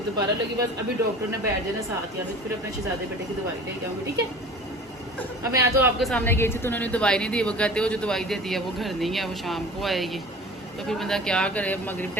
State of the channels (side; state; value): both; normal; correlation 0.41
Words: दोबारा लगी। बस अभी डॉक्टर ने बैठ जाना साथ, या फिर अपने शहजादे बेटे की दवाई ले जाऊँगी, ठीक है। अब मैं तो आपके सामने गई थी तो उन्होंने दवाई नहीं दी। वो कहते हो जो दवाई देती है वो घर नहीं है, वो शाम को आएगी। तो फिर बंदा क्या करे। मगरिब